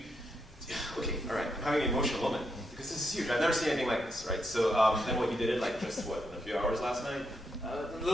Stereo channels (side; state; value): both; normal; correlation 0.81